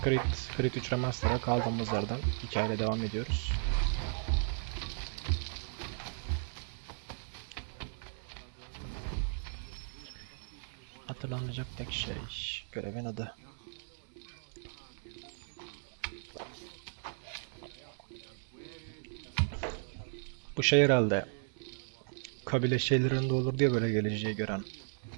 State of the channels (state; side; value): silent; left; digital silence